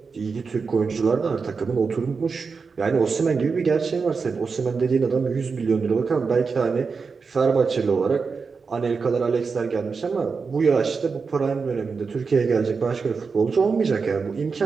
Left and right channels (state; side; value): quieter; left; 5.0 dB